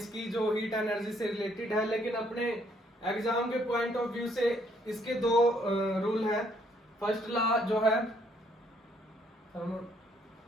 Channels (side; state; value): both; normal; correlation 0.68